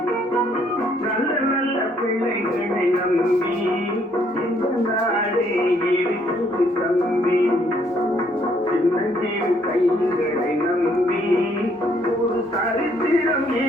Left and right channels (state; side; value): normal; both; correlation 0.67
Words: நல்ல நல்ல பிள்ளைகளை நம்பி இந்த நாடே இருக்குது தம்பி. சின்னஞ்சிறு கைகளை நம்பி ஒரு சரித்திரம்